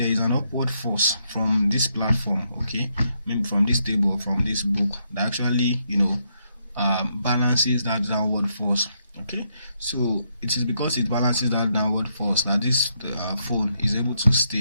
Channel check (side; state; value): both; inverted; correlation -0.77